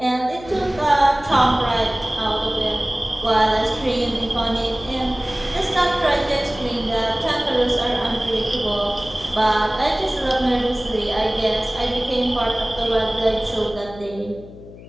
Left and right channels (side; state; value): left; noise; hum, 17 dB below the sound